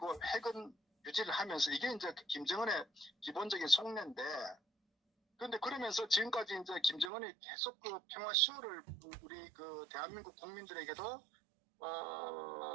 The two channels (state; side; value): drops out; left; at 7.1 s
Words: 핵은 유지를 하면서, 이게 이제 김정은의 기본적인 속내인데, 그런데 그러면서 지금까지 이제 김정은이 계속 그 평화 쇼를 우리 그 대한민국 국민들에게도